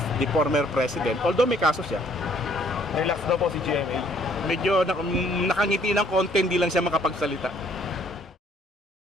the former president, although may kaso siya, Relax daw po si GMA. medyo nakangiti ng konti, hindi lang siya makapagsalita.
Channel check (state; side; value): normal; both; correlation 0.62